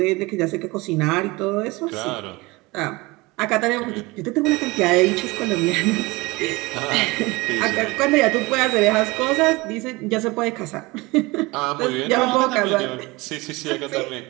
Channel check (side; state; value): left; quieter; 23.1 dB